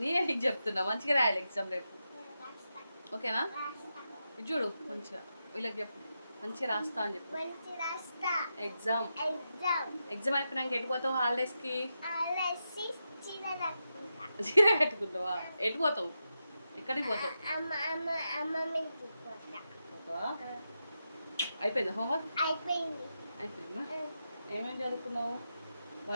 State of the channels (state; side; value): inverted; both; correlation -0.88